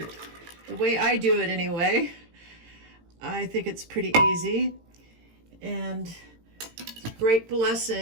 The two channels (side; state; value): left; late; 18 ms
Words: The way I do it anyway. I think it's pretty easy. And it's a great